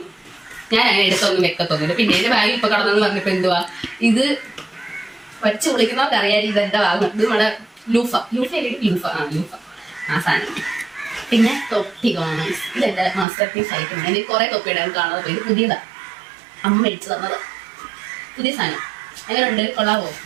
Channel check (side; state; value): left; drops out; at 13.2 s